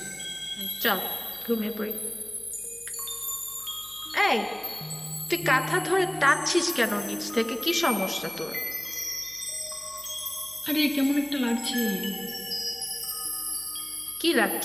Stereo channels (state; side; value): noise; left; hum, 27 dB below the sound